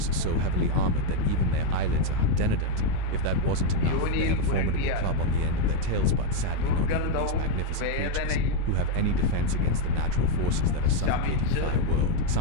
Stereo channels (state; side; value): different; both; correlation 0.02